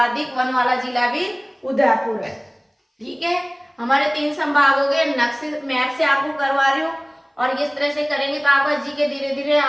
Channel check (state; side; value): identical; both; correlation 1.00